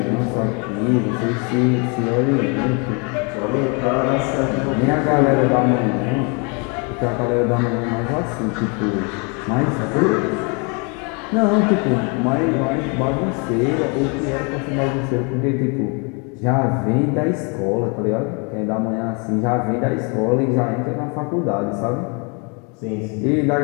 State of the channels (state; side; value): quieter; right; 33.6 dB